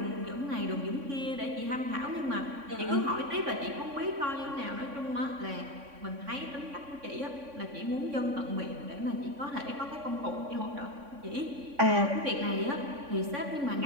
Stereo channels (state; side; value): late; left; 3.6 ms